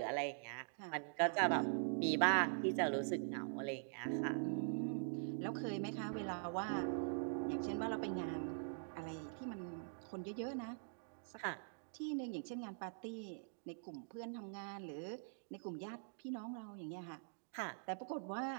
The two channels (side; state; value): left; silent; digital silence